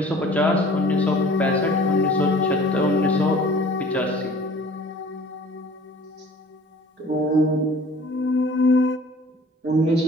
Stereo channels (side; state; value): both; normal; correlation 0.49